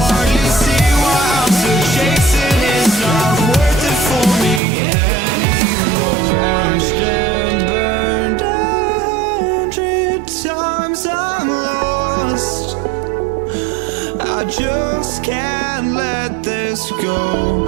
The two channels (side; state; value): left; drops out; at 4.6 s